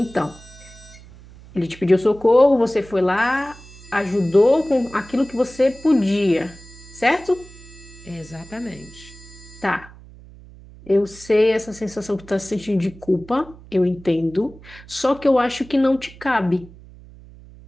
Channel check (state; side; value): noise; right; hum, 20 dB below the sound